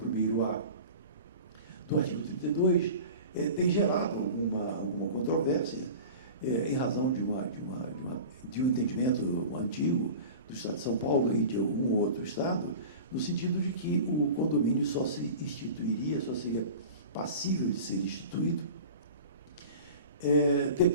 1º A do artigo 32, tem gerado alguma controvérsia em razão de um entendimento antigo do Estado de São Paulo e de algum outro Estado, no sentido de que o condomínio só se instituiria, só seria passível de ser instituído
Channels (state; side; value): inverted; both; correlation -0.37